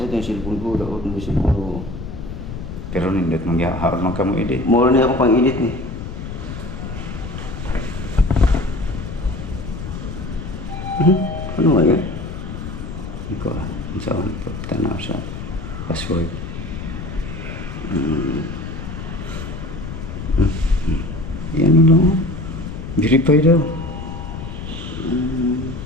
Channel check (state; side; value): noise; left; rumble, 8 dB below the sound